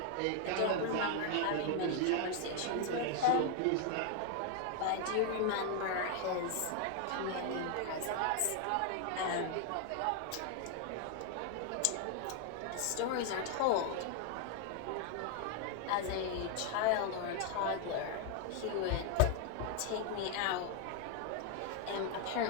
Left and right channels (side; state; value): both; different; correlation 0.00